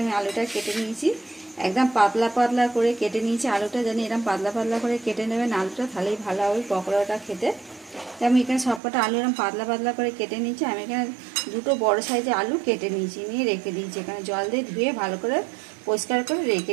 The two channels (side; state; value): left; drops out; at 8.8 s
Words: আমি আলুটা কেটে নিয়েছি। একদম পাতলা পাতলা করে কেটে নিয়েছি আলুটা, জানি এরকম পাতলা পাতলা করে কেটে নেবেন আলুটা, তাহলেই ভালো হবে পকোড়াটা খেতে। তাই আমি এখানে সবকটা আলু এরকম পাতলা পাতলা করে কেটে নিয়েছি। আমি এখানে দুটো বড় সাইজের আলু কেটে নিয়েছি, নিয়ে রেখে দিয়েছি এখানে জল দিয়ে ধুয়ে ভালো করে পরিষ্কার করে রেখে